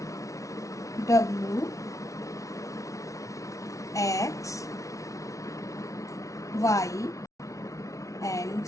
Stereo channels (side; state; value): right; late; 0.16 ms